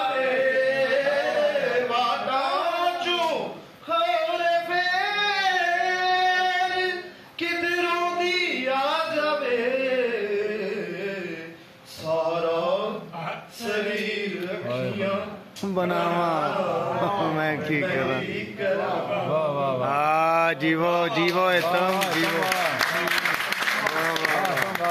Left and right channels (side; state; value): both; identical; correlation 1.00